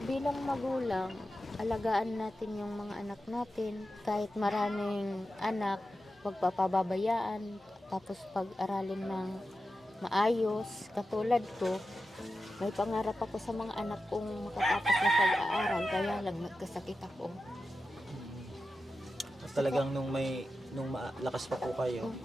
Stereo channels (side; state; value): both; normal; correlation 0.91